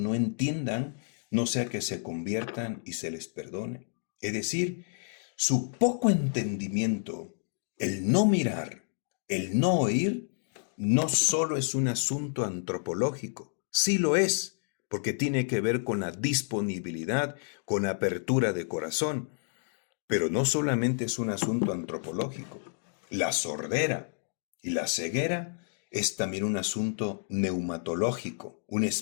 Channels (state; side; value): silent; right; digital silence